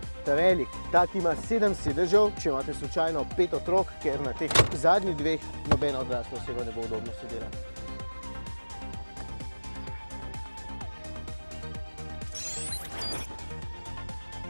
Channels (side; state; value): both; inverted; correlation -1.00